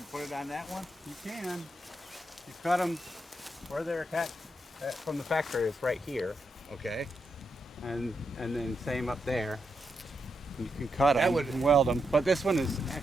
put it on that one? You can. You cut them where they're attached from the factory is right here, Okay. and then same up there. You can cut That them would- and weld them, but this one is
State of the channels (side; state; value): both; normal; correlation 0.83